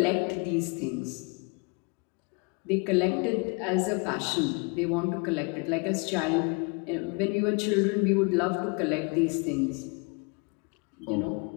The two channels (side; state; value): right; quieter; 32.2 dB